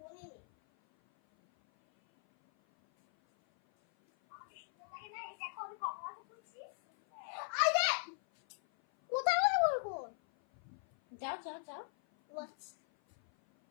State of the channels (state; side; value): silent; right; 52 dB below the other